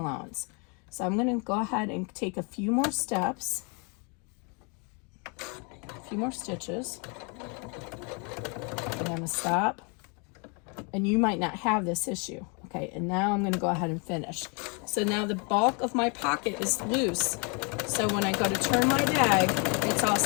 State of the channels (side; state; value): right; quieter; 34.3 dB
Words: So I'm going to go ahead and take a few more steps, a few more stitches. I'm going to stop. And you might not have this issue. Okay, and now I'm going to go ahead and finish. So now the bulk of my pocket is loose. So when I go to turn my bag, it's all